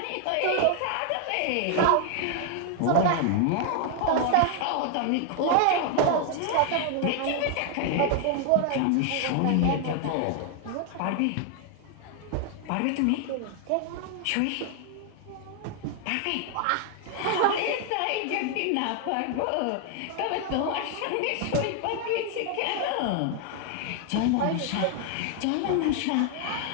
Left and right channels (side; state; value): both; different; correlation 0.00